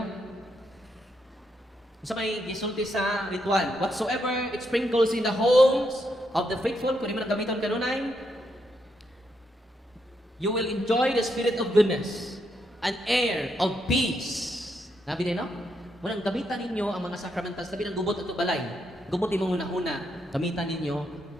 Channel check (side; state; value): both; normal; correlation 0.79